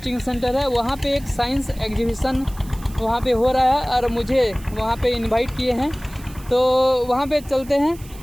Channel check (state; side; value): noise; right; hiss, 21 dB below the sound